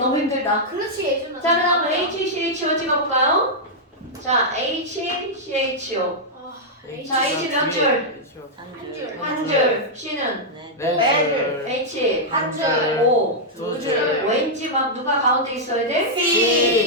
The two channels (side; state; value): both; normal; correlation -0.06